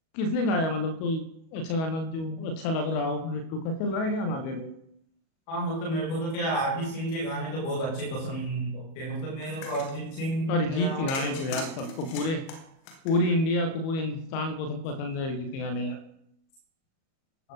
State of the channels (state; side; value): late; right; 37 ms